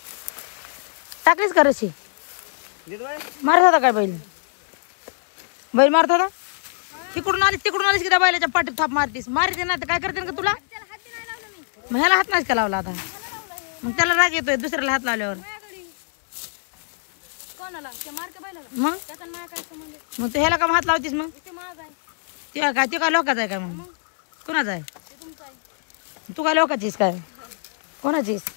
टाकलीच का रशी मारत होता काय बैल बैल मारत होता. तिकडून आलीस की त्या बैलाच्या पाठीत थाप मारतीस मारते ना तर काय करते का तुला. मग ह्याला हात नाहीच का लावला आता मग त्याला राग येतोय दुसऱ्याला हात लावल्यावर. मग तू ह्याला का हात लावतीस मग ते काय लोकांचा आहे काय मग कोणाचा आहे तू काय लोकांचीस काय कोणाचीस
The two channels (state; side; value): silent; right; 63 dB below the other